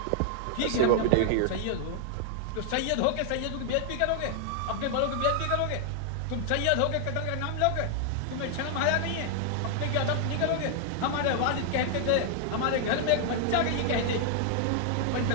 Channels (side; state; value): both; different; correlation 0.00